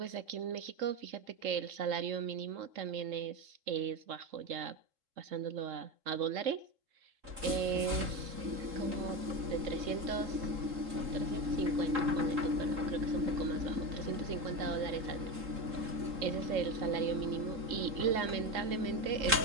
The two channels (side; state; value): left; late; 3.7 ms